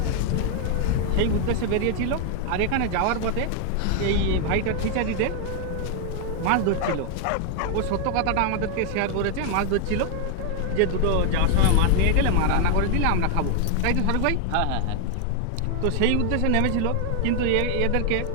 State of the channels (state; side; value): different; both; correlation 0.00